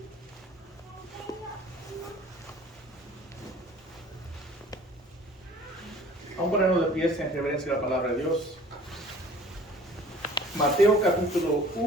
Vamos a ponernos de pie en reverencia a la palabra de Dios. Mateo capítulo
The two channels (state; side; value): normal; both; correlation 0.49